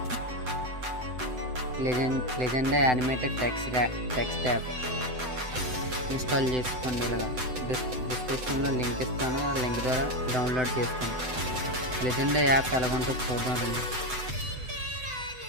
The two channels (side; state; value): left; late; 7.9 ms